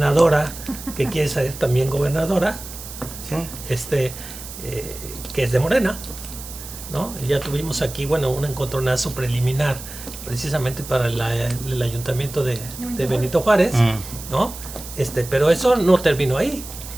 que quiere ser también gobernadora, Sí. que es de Morena, ¿no? Y ya tuvimos aquí, bueno, un encontronazo preliminar precisamente para el ayuntamiento de Benito Juárez, ¿no? Pero eso no terminó ahí.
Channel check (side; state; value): right; noise; hiss, 13 dB below the sound